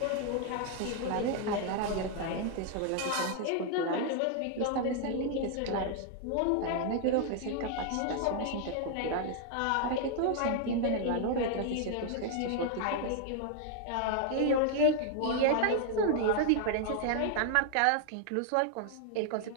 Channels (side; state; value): both; different; correlation 0.00